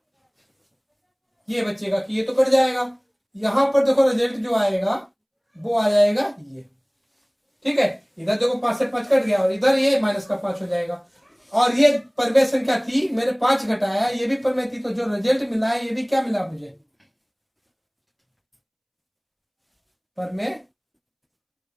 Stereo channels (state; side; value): identical; both; correlation 1.00